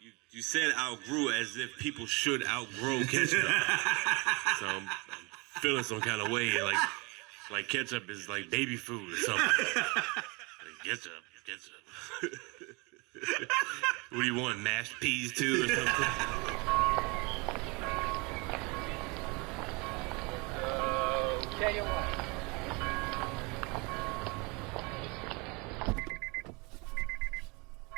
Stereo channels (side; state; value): left; quieter; 28.3 dB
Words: You said outgrew as if people should outgrow ketchup. So I'm feeling some kind of way, like ketchup is like baby food or something. Like ketchup. What do you want, mashed peas too or something? Tell you what.